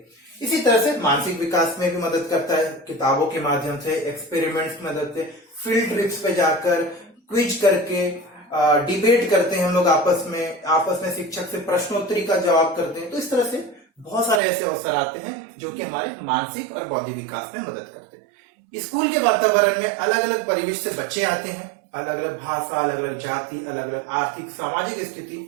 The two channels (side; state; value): left; drops out; at 14.4 s